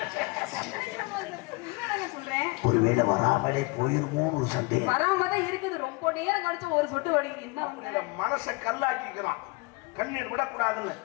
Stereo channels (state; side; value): quieter; right; 26.8 dB